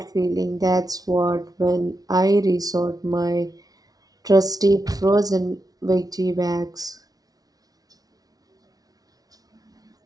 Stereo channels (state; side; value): late; left; 0.18 ms